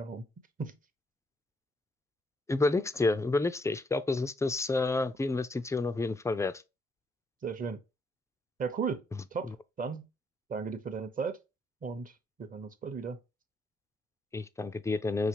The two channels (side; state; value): both; normal; correlation 0.74